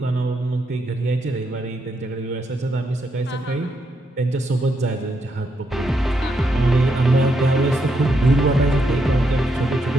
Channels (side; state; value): both; normal; correlation 0.79